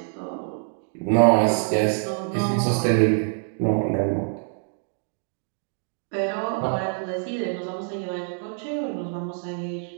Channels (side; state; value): left; silent; 58 dB below the other